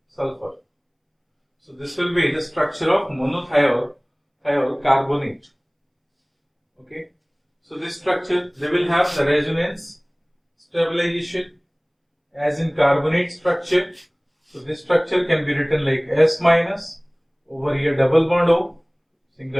sulfur. So this will be the structure of monothiol carbonate. Okay. So this structure, they will have the resonance stabilization as in carbonate structure. So this structure can be written like S minus, over here double bond O,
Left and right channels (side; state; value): both; identical; correlation 1.00